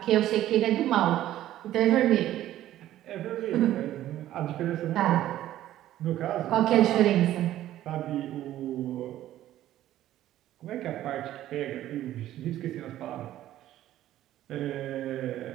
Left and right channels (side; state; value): left; quieter; 13.3 dB